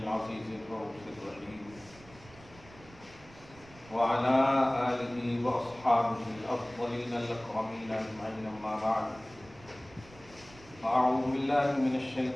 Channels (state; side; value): noise; right; rumble, 22 dB below the sound